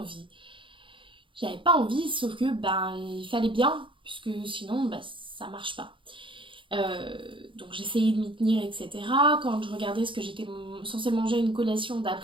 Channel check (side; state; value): left; late; 0.25 ms